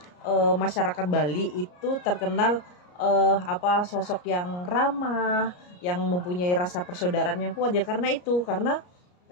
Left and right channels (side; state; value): right; late; 34 ms